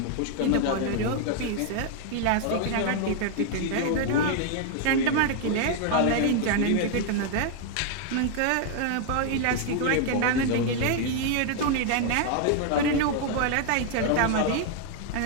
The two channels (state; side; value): different; both; correlation 0.00